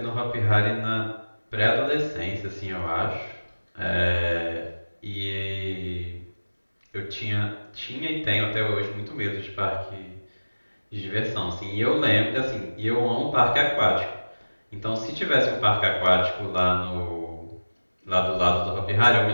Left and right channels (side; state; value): both; inverted; correlation -1.00